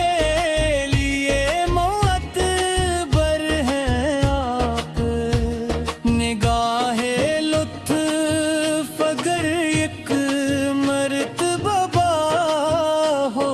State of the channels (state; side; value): identical; both; correlation 1.00